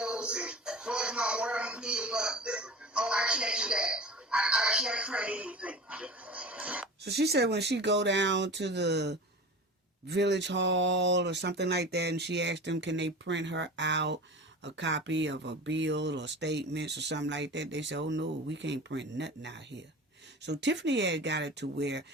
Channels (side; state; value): both; normal; correlation 0.35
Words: and what my water bill? But I can't do that. I can't print anything. So she said when she go down to the village hall or something like that, and she asked them, can they print her out a copy of a bill or statements or something like that, they said, oh no, we can't print nothing out here. So Tiffany had got it to where